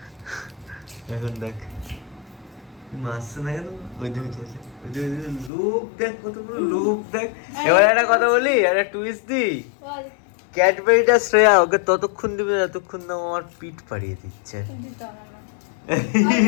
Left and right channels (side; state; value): right; drops out; at 5.5 s